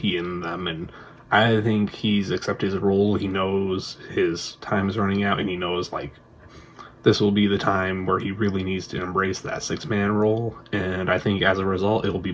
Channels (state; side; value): identical; both; correlation 1.00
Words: and them. And I think he's accepted his role. He knows his time is running out, and he knows, like, this will be the time where he really needs to embrace that six-man role, and I think as a result, it will be